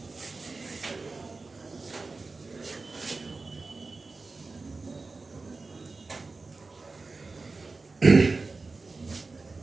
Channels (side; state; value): left; quieter; 3.8 dB